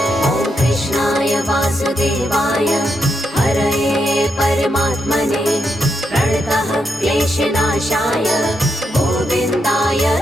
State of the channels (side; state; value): both; normal; correlation 0.82